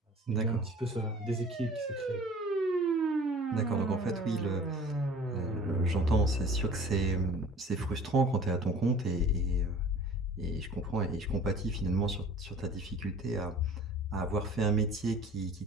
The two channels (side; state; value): both; normal; correlation 0.46